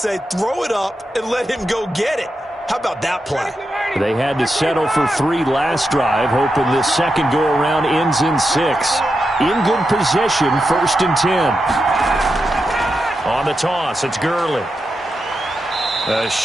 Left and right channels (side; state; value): both; normal; correlation 0.87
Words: say, throw it up and let him go get it. How about that play? They had to settle for 3 last drive, hoping this second go-around ends in 6. In good position, 1st and 10. On the toss, it's Gurley. A